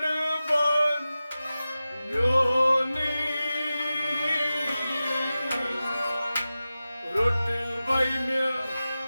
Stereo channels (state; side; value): inverted; both; correlation -0.95